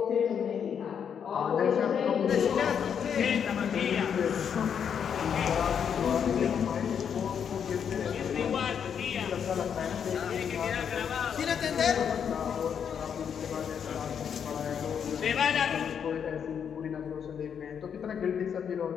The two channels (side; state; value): right; quieter; 7.7 dB